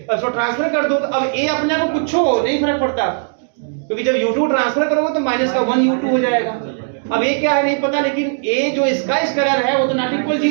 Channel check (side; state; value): left; silent; digital silence